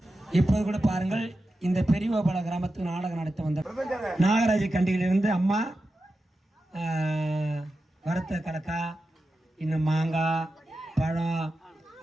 இப்போது கூட பாருங்கள், இந்த பெரியவபால கிராமத்துக்கு நாடகம் நடத்த வந்த நாகராஜ கண்டியிலிருந்து அம்மா வறுத்த கடக்கா, இன்னும் மாங்காய், பழம்,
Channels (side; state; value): both; normal; correlation 0.91